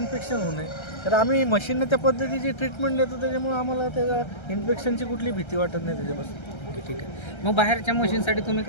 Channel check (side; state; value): right; late; 1.3 ms